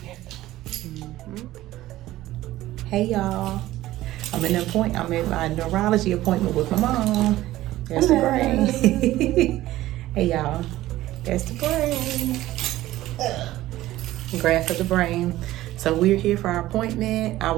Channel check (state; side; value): quieter; left; 15.6 dB